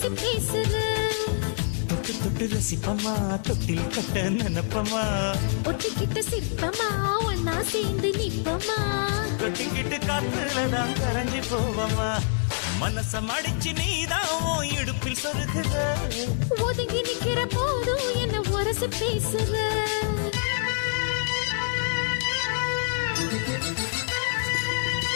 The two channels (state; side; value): silent; right; 61 dB below the other